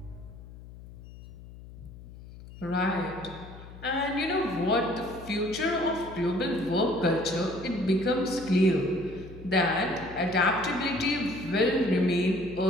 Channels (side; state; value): left; noise; hum, 16 dB below the sound